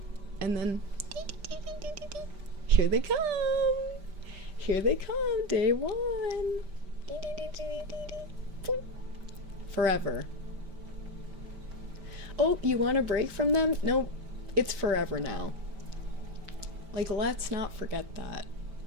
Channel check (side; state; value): left; late; 5.1 ms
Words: And then, here they come. Here they come, day one. Forever. Oh, you want a break from them? Nope, it's forever now. Like, let's not forget that.